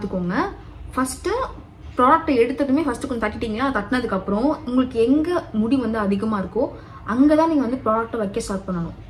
ஃபஸ்ட்டு ப்ராடக்ட்டை எடுத்ததுமே ஃபஸ்ட்டு கொஞ்சம் தட்டிட்டிங்களா, தட்டினதுக்கப்புறம் உங்களுக்கு எங்கே முடி வந்து அதிகமாக இருக்கோ அங்கே தான் நீங்கள் வந்து ப்ராடக்ட்டை வைக்க ஸ்டார்ட் பண்ணணும்.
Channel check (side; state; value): both; identical; correlation 1.00